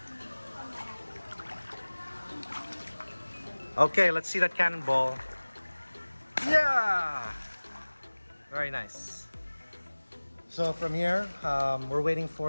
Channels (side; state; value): both; inverted; correlation -1.00